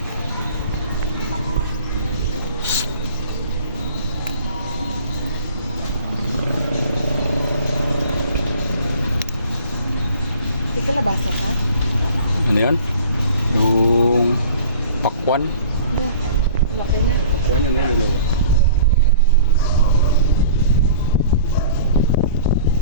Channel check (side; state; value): both; inverted; correlation -0.46